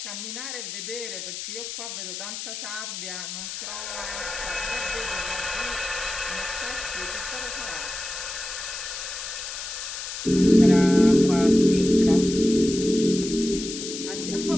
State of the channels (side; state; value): left; noise; hiss, 7 dB below the sound